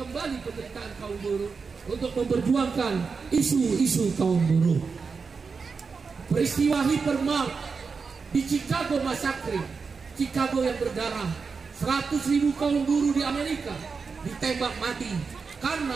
penderitaan kaum buruh untuk memperjuangkan isu-isu kaum buruh. Peristiwa Hypermart di Chicago Massacre, Chicago yang berdarah, 100.000 kaum buruh di Amerika ditembak mati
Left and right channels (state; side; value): quieter; left; 5.0 dB